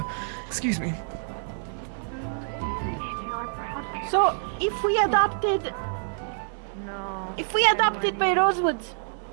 Excuse me. So if we adopted by Rosewood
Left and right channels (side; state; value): left; silent; 60 dB below the other